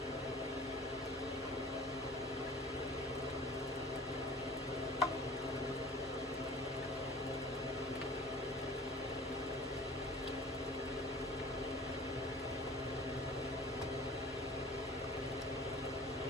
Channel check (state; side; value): normal; both; correlation 0.45